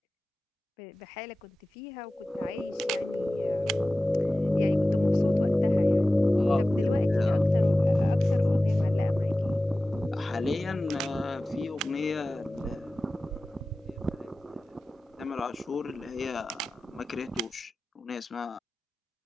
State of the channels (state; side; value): normal; both; correlation 0.96